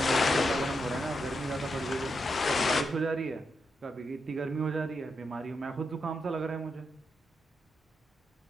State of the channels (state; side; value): normal; both; correlation 0.84